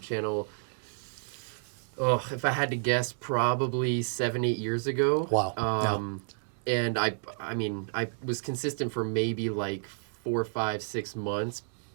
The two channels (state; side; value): silent; left; digital silence